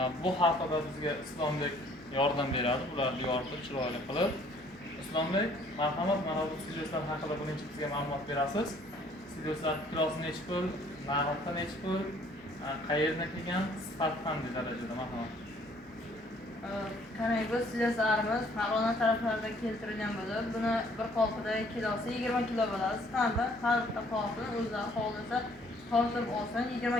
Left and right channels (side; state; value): both; normal; correlation 0.60